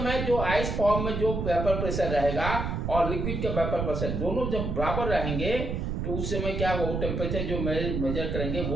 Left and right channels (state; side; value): noise; right; rumble, 2 dB below the sound